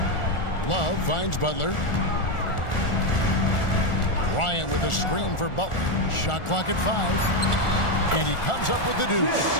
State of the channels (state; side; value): late; right; 1.4 ms